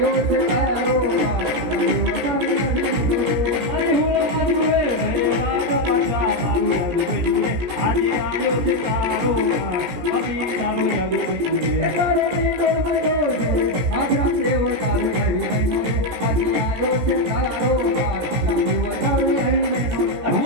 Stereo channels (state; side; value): late; left; 17 ms